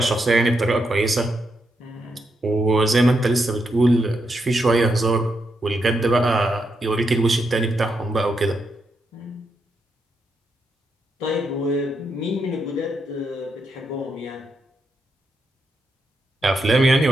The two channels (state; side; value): normal; both; correlation 0.82